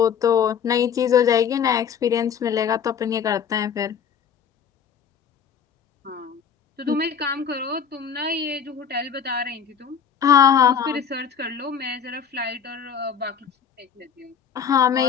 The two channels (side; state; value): right; quieter; 7.5 dB